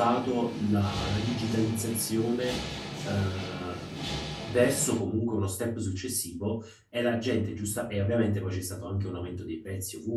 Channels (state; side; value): identical; both; correlation 1.00